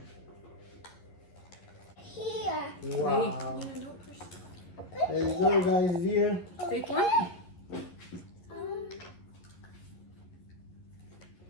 Here. Wow. Yeah, don't push. There you go, guys. Here. Take one.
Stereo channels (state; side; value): late; right; 11 ms